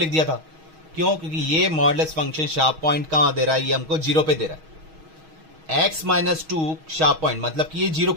दिया था, क्यों, क्योंकि ये मॉडुलस फंक्शन शार्प पॉइंट कहां दे रहा है, ये हमको 0 पे दे रहा है। x माइनस 2 शार्प पॉइंट मतलब कि ये 0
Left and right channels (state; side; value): late; left; 6.3 ms